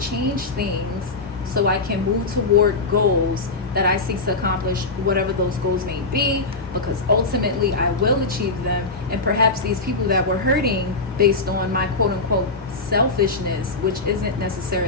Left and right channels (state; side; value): quieter; right; 3.5 dB